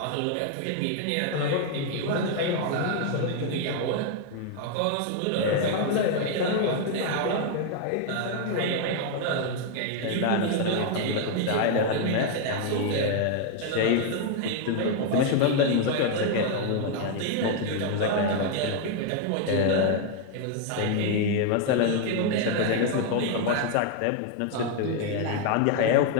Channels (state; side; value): different; both; correlation 0.00